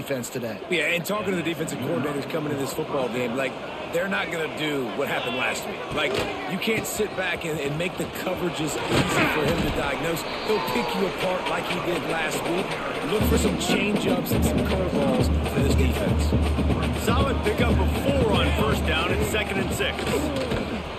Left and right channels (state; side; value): identical; both; correlation 1.00